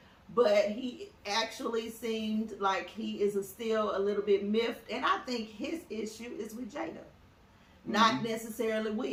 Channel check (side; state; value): both; identical; correlation 1.00